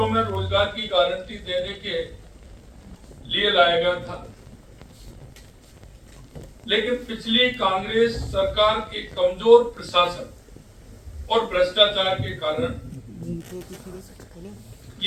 में रोजगार की गारंटी देने के लिए लाया गया था, लेकिन पिछली कांग्रेस सरकार के कमजोर प्रशासन और भ्रष्टाचार के कारण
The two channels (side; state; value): both; identical; correlation 1.00